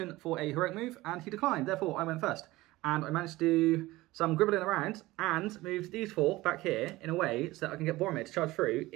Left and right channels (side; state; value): left; quieter; 18.8 dB